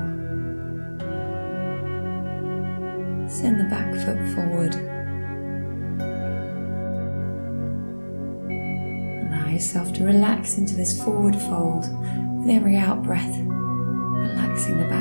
Send the back foot forward. Yourself to relax into this forward fold with every out breath, relaxing the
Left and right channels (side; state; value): both; inverted; correlation -1.00